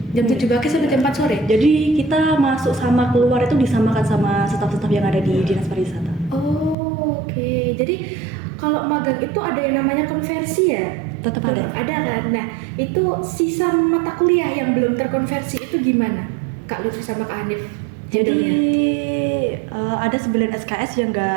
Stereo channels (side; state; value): left; drops out; at 6.8 s